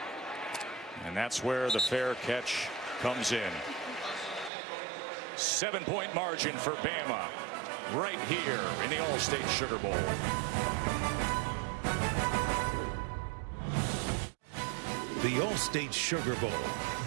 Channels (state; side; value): drops out; left; at 4.5 s